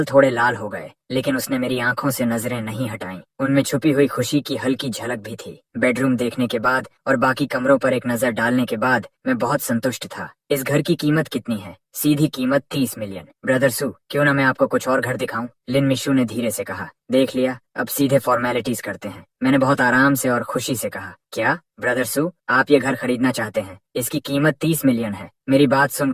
थोड़े लाल हो गए, लेकिन उसने मेरी आंखों से नजरें नहीं हटाईं। उनमें छुपी हुई खुशी की हल्की झलक भी थी। बेडरूम देखने के बाद और बाकी कमरों पर एक नजर डालने के बाद मैं बहुत संतुष्ट था। इस घर की कीमत कितनी है? सीधी कीमत 30 मिलियन। ब्रदर सू, क्यों ना मैं आपको कुछ और घर दिखाऊं? लिन मिशू ने धीरे से कहा। देख लिया, अब सीधे फॉर्मेलिटीज करते हैं, मैंने बहुत आराम से और खुशी से कहा। क्या ब्रदर सू, आप ये घर खरीदना चाहते हैं? इसकी कीमत 30 मिलियन है। मेरी बात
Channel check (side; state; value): both; identical; correlation 1.00